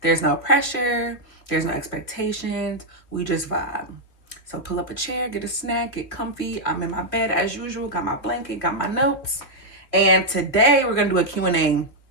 There's no pressure, there's no expectations. We just vibe. So pull up a chair, get a snack, get comfy. I'm in my bed as usual, got my blanket, got my notes. And today we're gonna do a Q&A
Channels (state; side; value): late; right; 3.0 ms